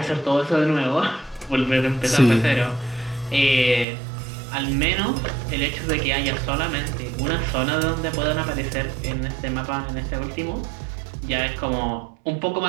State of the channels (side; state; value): left; drops out; at 3.9 s